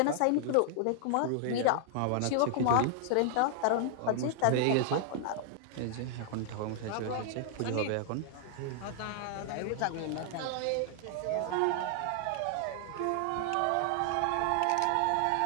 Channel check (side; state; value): both; different; correlation 0.00